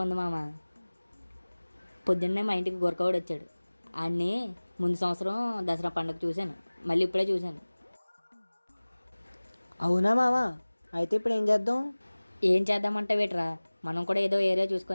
ఉంది మామ. పొద్దున్నే మా ఇంటికి గొరకవాడు వచ్చాడు. ఆడిని ముందు సంవత్సరం దసరా పండుగ చూశాను, మళ్ళీ ఇప్పుడే చూశాను. అవునా మావా, అయితే ఇప్పుడు ఏం చేద్దాం? ఏం చేద్దామంటే వేట్రా, మనం కూడా ఏదో ఏరియా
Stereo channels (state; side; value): inverted; both; correlation -1.00